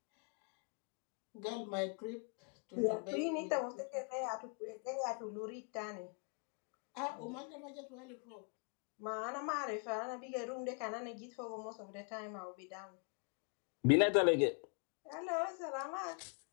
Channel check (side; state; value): right; quieter; 39.9 dB